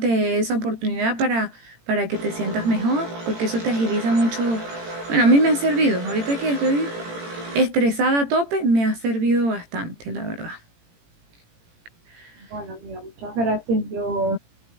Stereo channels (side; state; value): left; late; 18 ms